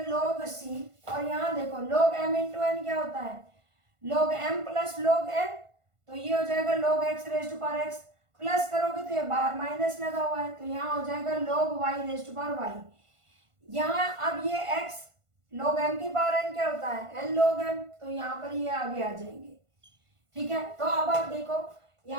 लॉग सी, और यहाँ देखो लॉग एम इंटू एन क्या होता है, log m plus log n, तो ये हो जाएगा log x raise to power x, plus करोगे तो ये बाहर माइनस लगा हुआ है, तो यहाँ हो जाएगा log y raise to power y। यहाँ अब ये x log m की पावर n क्या होता है, n log m, तो यहाँ पर ये आगे आ जाएंगे, ठीक है। तो अब आप देखो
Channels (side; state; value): left; late; 1.5 ms